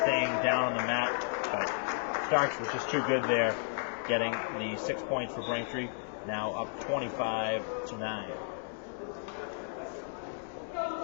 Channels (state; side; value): silent; right; digital silence